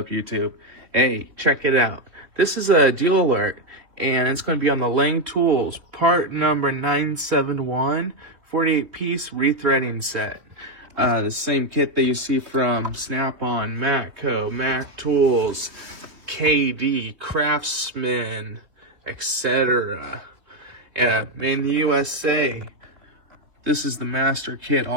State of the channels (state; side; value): late; left; 3.5 ms